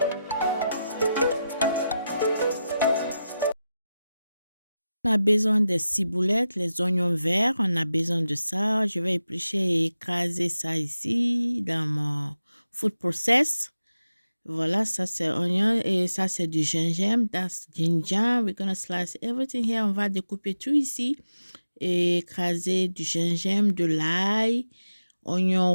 On a besoin des ciboulettes, les oignons verts, on a besoin de ça. Je vais éplucher et écraser ça ici dans mon food process. Voilà, ça c'est oignon et ça c'est du gingembre. That's ginger. We're gonna slice everything here. On va découper tout ici et écraser du gingembre, de l'ail, oignon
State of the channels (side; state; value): both; inverted; correlation -0.91